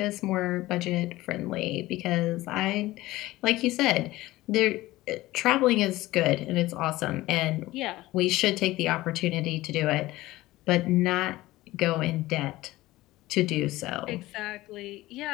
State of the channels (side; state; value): right; quieter; 17.7 dB